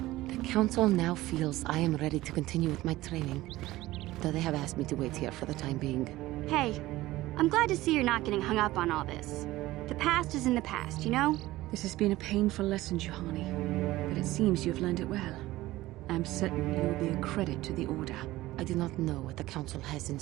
The Council now feels I am ready to continue with my training, though they have asked me to wait here for the time being. Hey, I'm glad to see you're not getting hung up on all this. The past is in the past, you know? This has been a painful lesson, Juhani, but it seems you've learned it well. I'm certain you will be a credit to the Order. I do not know what the Council has in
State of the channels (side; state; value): left; quieter; 17.3 dB